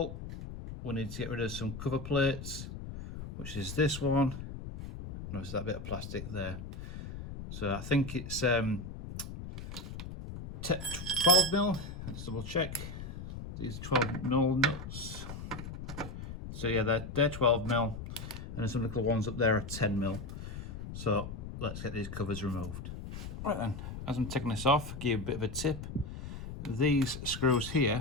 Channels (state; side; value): noise; left; rumble, 9 dB below the sound